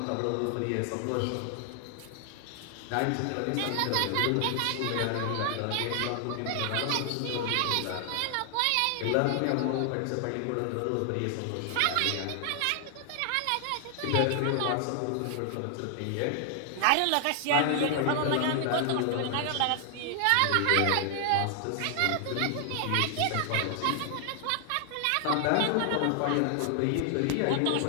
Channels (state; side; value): different; both; correlation 0.00